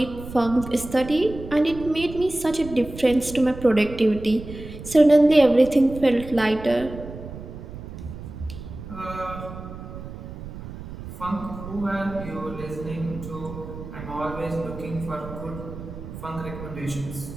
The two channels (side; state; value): right; noise; rumble, 12 dB below the sound